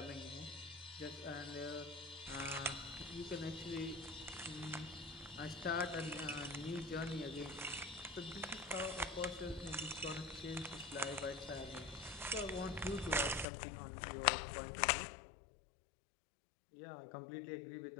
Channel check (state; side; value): drops out; right; at 13.5 s